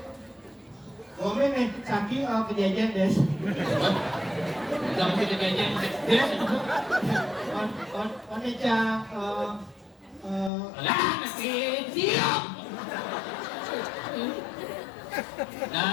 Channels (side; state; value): right; drops out; at 10.5 s